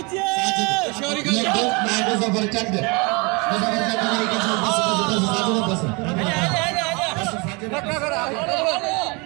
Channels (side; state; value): left; quieter; 29.1 dB